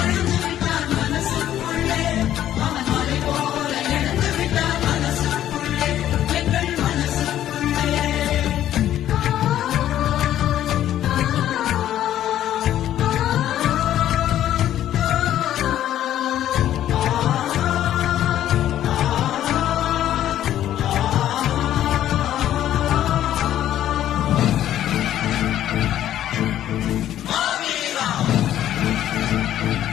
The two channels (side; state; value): right; quieter; 11.9 dB